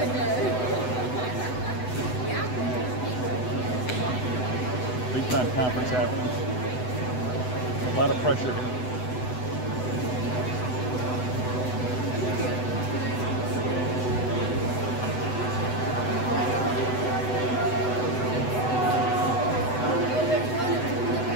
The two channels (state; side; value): late; right; 8.0 ms